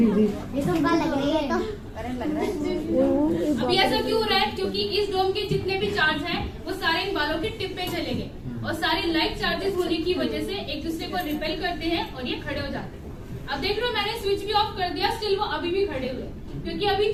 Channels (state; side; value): identical; both; correlation 1.00